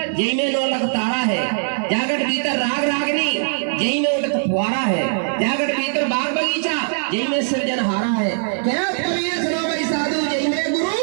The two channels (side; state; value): left; silent; digital silence